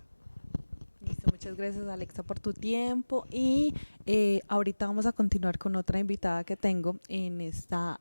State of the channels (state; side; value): inverted; both; correlation -1.00